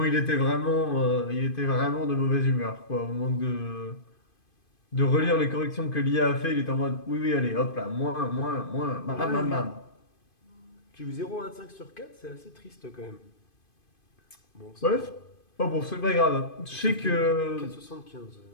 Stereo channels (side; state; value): right; late; 2.5 ms